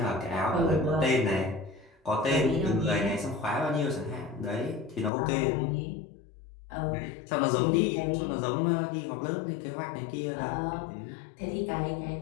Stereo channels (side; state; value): right; drops out; at 5.1 s